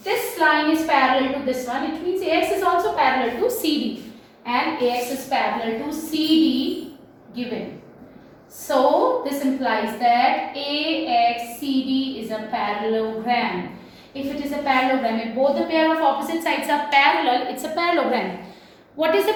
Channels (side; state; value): both; identical; correlation 1.00